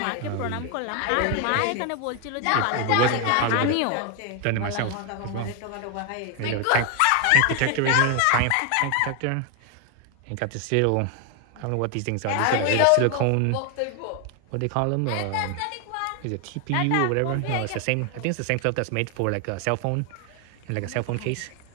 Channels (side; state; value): both; different; correlation 0.01